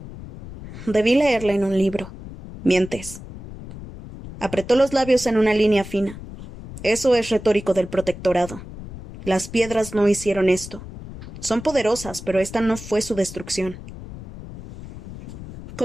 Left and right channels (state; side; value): noise; left; rumble, 13 dB below the sound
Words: «Debí leerla en un libro». «Mientes». Apretó los labios en una línea fina. «Eso es retórico del protectorado. Las piedras no hicieron esto. Son poderosas, pero esta no fue su destrucción».